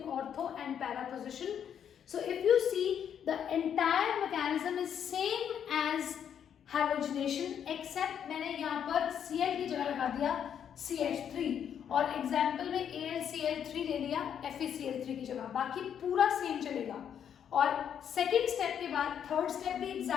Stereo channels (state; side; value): quieter; right; 8.7 dB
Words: ortho and para position. So if you see, the entire mechanism is same as halogenation, except मैंने यहाँ पर Cl की जगह लगा दिया CH3, और example में AlCl3 ले लिया FeCl3 की जगह, बाकी पूरा सेम चलेगा. और सेकेंड स्टेप के बाद थर्ड स्टेप भी